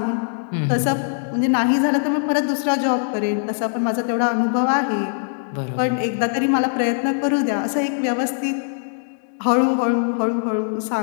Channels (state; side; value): silent; right; digital silence